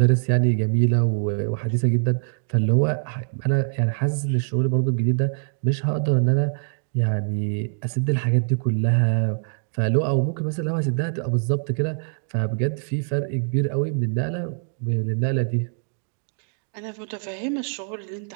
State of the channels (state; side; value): silent; left; digital silence